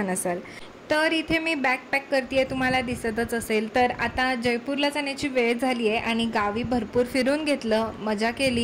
असाल। तर इथे मी बॅग पॅक करते, तुम्हाला दिसतच असेल। तर आता जयपूरला जाण्याची वेळ झाली आहे आणि गावी भरपूर फिरून घेतलं, मजा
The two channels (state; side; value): identical; both; correlation 1.00